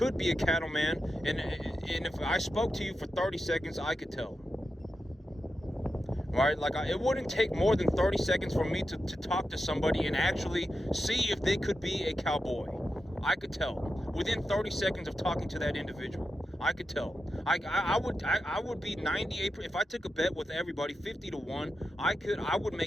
be a cattleman, and if I spoke to you for 30 seconds, I could tell. Right? Like, it wouldn't take more than 30 seconds for me to talk to somebody and actually see if they could be a cowboy. I could tell. Within 30 seconds of talking to that individual. I could tell. I would be 98. If I took a bet with everybody, 50-1, I would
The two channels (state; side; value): normal; both; correlation 0.89